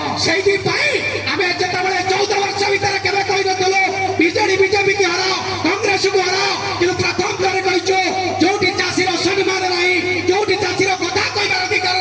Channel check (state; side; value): identical; both; correlation 1.00